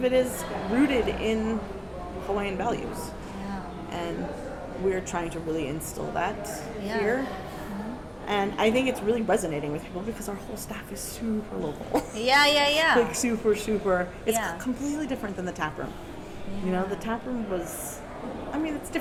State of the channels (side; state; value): both; identical; correlation 1.00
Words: it is rooted in Hawaiian values. And we're trying to really instill that here. And I think it's really resonating with people because our whole staff is super local. Like super. It's completely different than the tap room. You know, the tap room was, I mean, it's